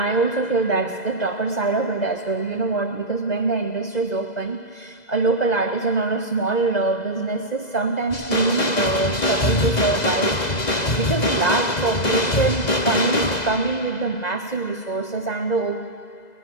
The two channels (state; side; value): late; right; 2.0 ms